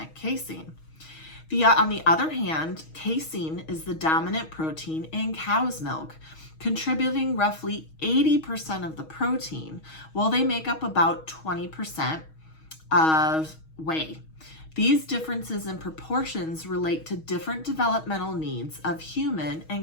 casein. On the other hand, casein is the dominant protein in cow's milk, contributing roughly 80% of the protein, while they make up about 20% of whey. These differences in proportions relate to different developmental needs of human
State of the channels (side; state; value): right; late; 6.3 ms